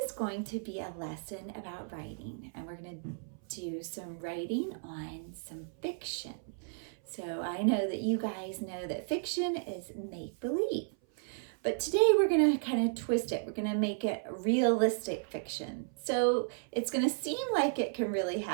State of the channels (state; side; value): silent; left; 55 dB below the other